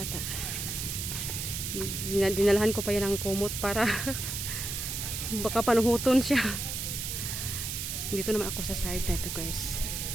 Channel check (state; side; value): noise; right; hiss, 4 dB below the sound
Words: Dinalahan ko pa yan ng kumot para baka panuhuton siya. Dito naman ako sa side na ito guys.